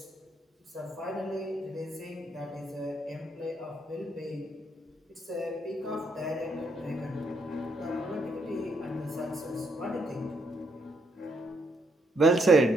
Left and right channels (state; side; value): normal; both; correlation 0.74